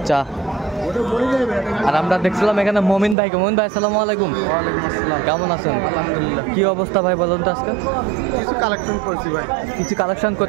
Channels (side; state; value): left; drops out; at 3.2 s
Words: আর আমরা দেখছিলাম এখানে মমিন ভাইকে। মমিন ভাই আসসালামু আলাইকুম। ওয়ালাইকুম আসসালাম। কেমন আছেন? আলহামদুলিল্লাহ। কি অবস্থা ভাই বলুন তো আজকে? কিছু কালেকশন করছি ভাই। কিছু কালেকশন